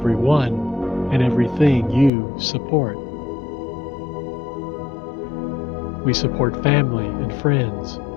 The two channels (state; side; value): drops out; right; at 2.1 s